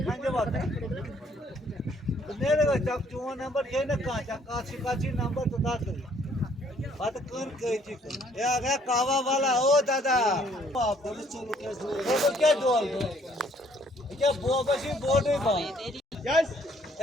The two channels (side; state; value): both; normal; correlation 0.63